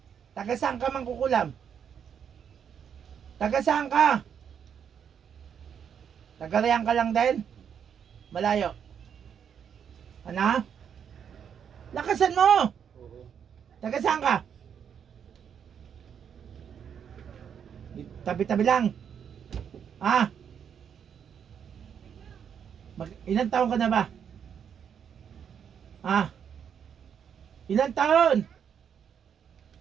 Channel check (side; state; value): left; quieter; 7.9 dB